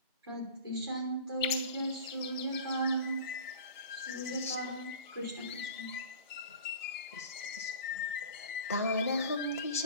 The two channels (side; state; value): both; inverted; correlation -0.39